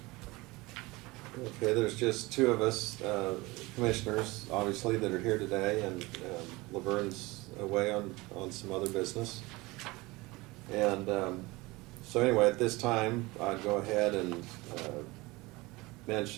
Okay, there's just two of us, commissioners, obviously, that are here today, and Laverne's away on some other business. And so anyway, at this time, I'd go ahead and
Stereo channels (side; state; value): left; quieter; 22.5 dB